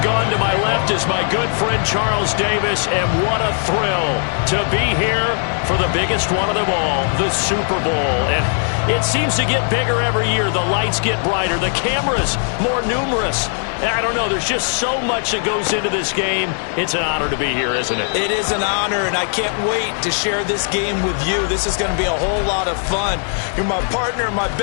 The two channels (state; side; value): silent; right; 62 dB below the other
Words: Gaughan. To my left is my good friend Charles Davis, and what a thrill to be here for the biggest one of them all, the Super Bowl. And it seems to get bigger every year. The lights get brighter, the cameras more numerous. I don't know, there's just so much that goes into this game. It's an honor to be here, isn't it? It is an honor, and I can't wait to share this game with you. This is going to be a whole lot of fun. You're my partner, my